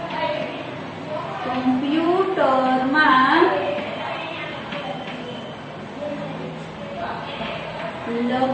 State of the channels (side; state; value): both; identical; correlation 1.00